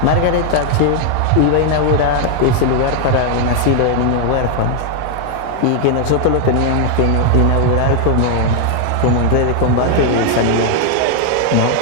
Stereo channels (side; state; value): both; different; correlation 0.00